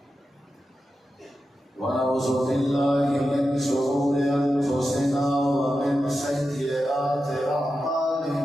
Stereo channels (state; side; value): normal; both; correlation 0.90